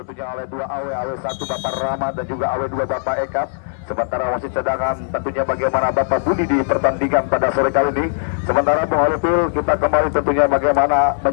oleh 2 AW, AW1 Bapak Rama dan juga AW2 Bapak Eka. Sementara wasit cadangan tentunya bagaimana Bapak Budi di pertandingan pada sore kali ini. Sementara Bung Holipil, kita kembali tentunya bagaimana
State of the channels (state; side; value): silent; right; digital silence